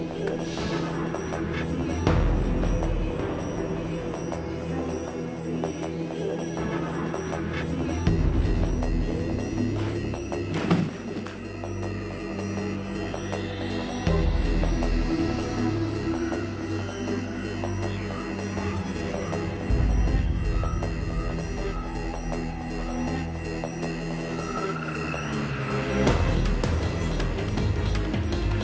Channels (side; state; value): both; identical; correlation 1.00